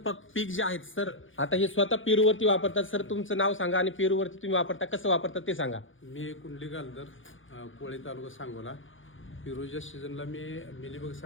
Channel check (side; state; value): right; late; 0.57 ms